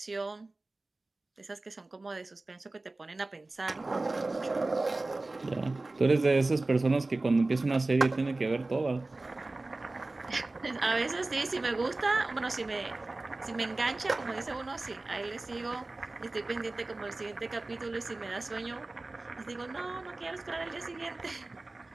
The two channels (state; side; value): quieter; left; 3.1 dB